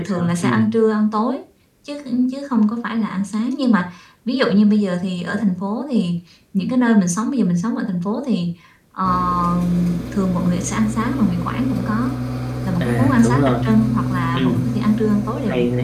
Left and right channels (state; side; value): identical; both; correlation 1.00